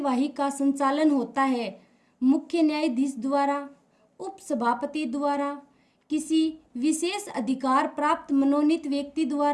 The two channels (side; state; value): both; identical; correlation 1.00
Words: का संचालन होता है मुख्य न्यायाधीश द्वारा, उपसभापति द्वारा, किसी विशेष अधिकार प्राप्त मनोनीत व्यक्ति